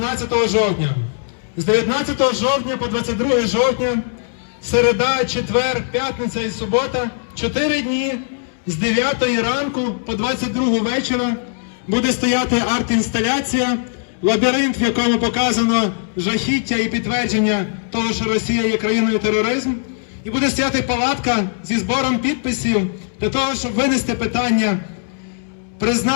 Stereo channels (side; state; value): right; silent; digital silence